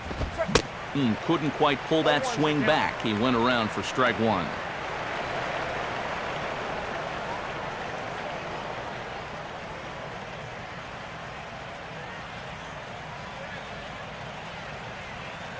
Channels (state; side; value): identical; both; correlation 1.00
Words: Couldn't quite pull that swing back. He went around for strike 1.